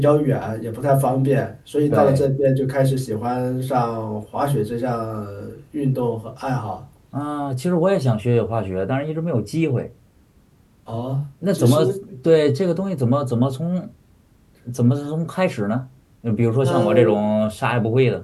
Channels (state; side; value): identical; both; correlation 1.00